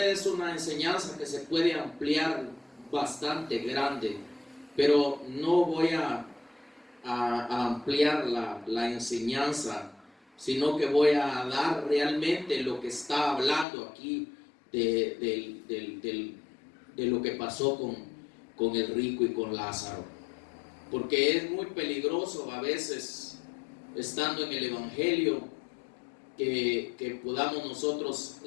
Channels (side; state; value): right; drops out; at 13.7 s